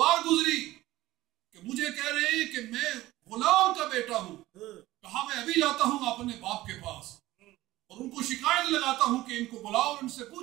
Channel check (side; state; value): left; quieter; 17.0 dB